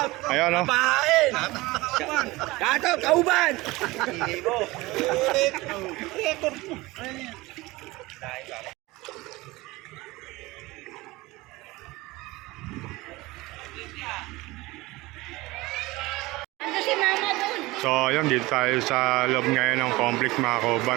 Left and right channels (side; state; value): left; quieter; 20.9 dB